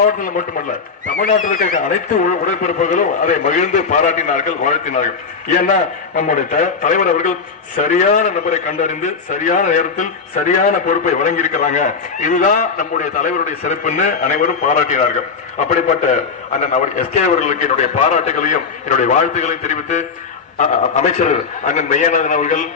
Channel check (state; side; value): quieter; right; 5.3 dB